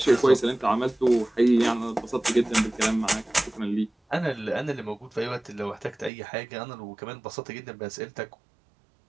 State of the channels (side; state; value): left; drops out; at 6.1 s